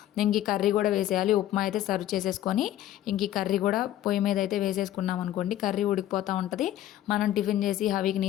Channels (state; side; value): quieter; right; 12.9 dB